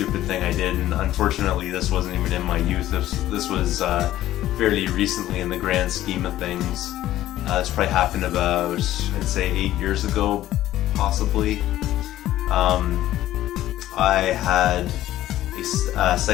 thing I did, and unfortunately this wasn't even in my youth. This was fairly recently in the grand scheme of things. This probably happened about, I'd say 8 years ago, possibly. I had a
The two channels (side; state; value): right; quieter; 13.9 dB